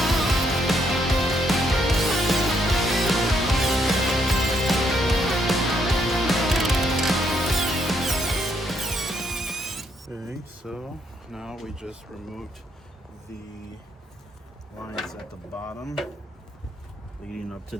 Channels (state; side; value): normal; both; correlation 0.74